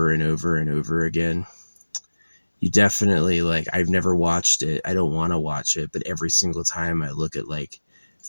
and over and over again. You definitely like, I've never watched it. I don't want to watch it, but every single time I look at like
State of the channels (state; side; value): inverted; both; correlation -1.00